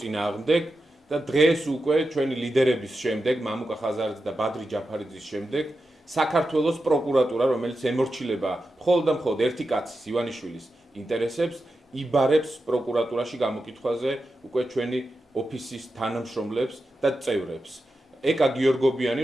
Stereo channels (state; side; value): normal; both; correlation 0.90